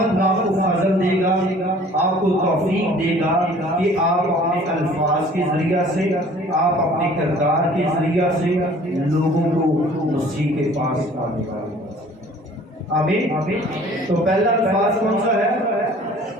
آپ کو فضل دے گا، آپ کو توفیق دے گا کہ آپ اپنے الفاظ کے ذریعہ سے، آپ اپنے کردار کے ذریعہ سے لوگوں کو مسیح کے پاس آنے والے۔ آمین۔ تو پہلا الفاظ کون سا ہے؟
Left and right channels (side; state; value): both; normal; correlation 0.51